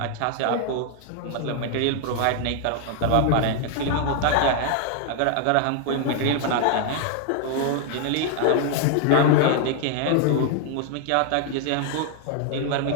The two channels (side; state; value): both; different; correlation 0.00